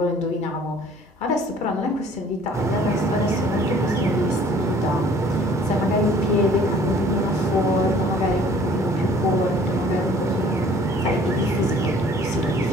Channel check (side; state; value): both; normal; correlation 0.54